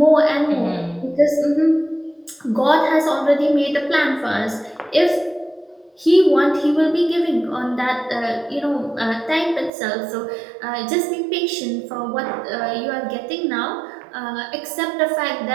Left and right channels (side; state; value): left; drops out; at 9.7 s